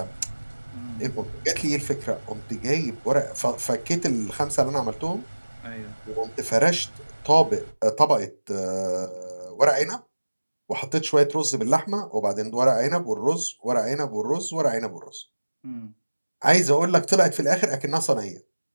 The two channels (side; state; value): both; inverted; correlation -1.00